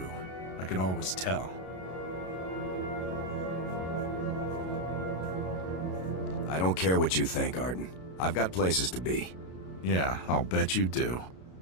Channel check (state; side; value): late; right; 32 ms